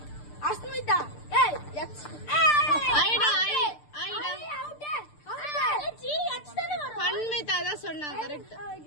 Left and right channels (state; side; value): late; right; 6.7 ms